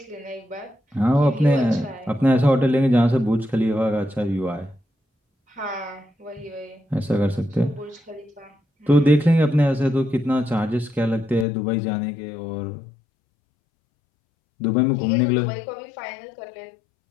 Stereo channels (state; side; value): drops out; right; at 11.5 s